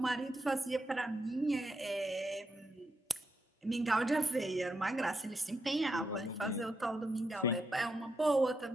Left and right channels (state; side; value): normal; both; correlation 0.83